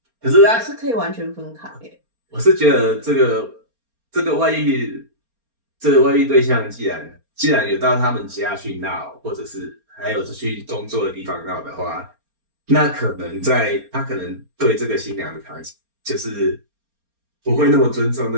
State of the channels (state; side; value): late; left; 4.3 ms